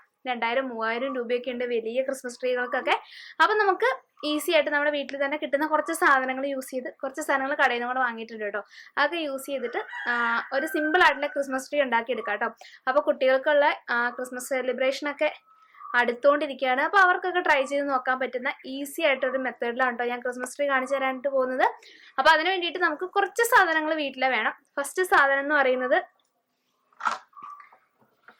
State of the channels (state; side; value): identical; both; correlation 1.00